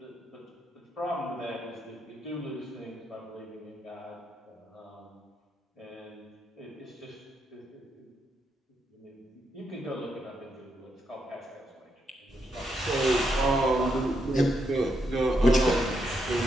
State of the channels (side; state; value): both; normal; correlation 0.80